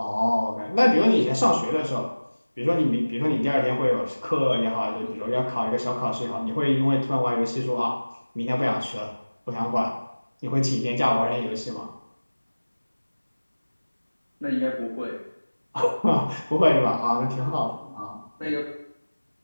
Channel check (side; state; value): both; inverted; correlation -1.00